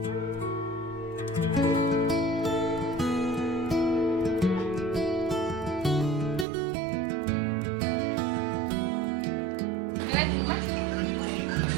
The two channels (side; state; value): left; drops out; at 6.5 s